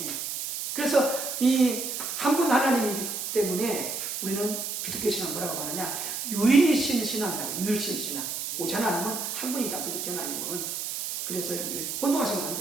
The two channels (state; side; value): noise; right; hiss, 4 dB below the sound